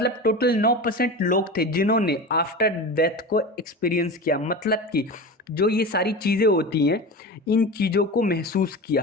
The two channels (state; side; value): normal; both; correlation 0.29